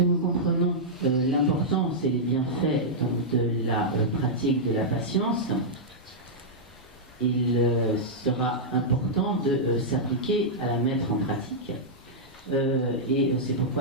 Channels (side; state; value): both; normal; correlation -0.09